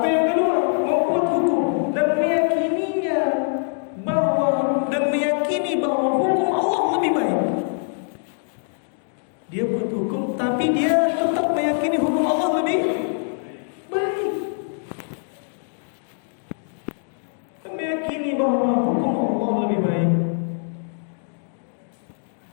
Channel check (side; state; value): right; silent; 63 dB below the other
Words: yang kedua? Membuat hukum dan meyakininya meyakini bahwa hukum Allah lebih baik. Dia buat hukum tapi dia tetap meyakini hukum Allah lebih baik. Dan meyakini bahwa hukum Allah lebih baik.